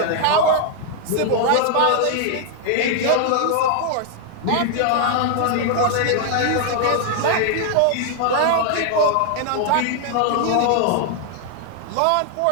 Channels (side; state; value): both; different; correlation 0.00